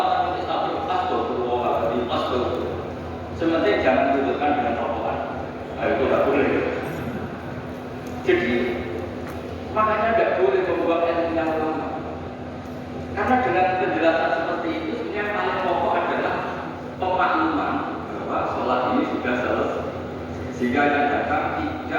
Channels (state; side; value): identical; both; correlation 1.00